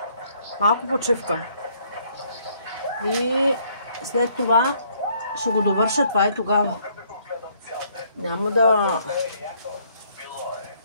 малко почивка. И след това ще го довърша това и тогава. Няма да...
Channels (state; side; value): inverted; both; correlation -0.66